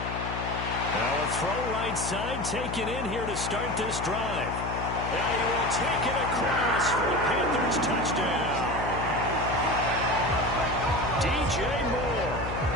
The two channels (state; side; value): noise; left; hum, 6 dB below the sound